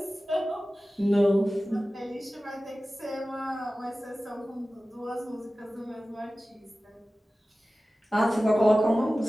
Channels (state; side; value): normal; both; correlation 0.96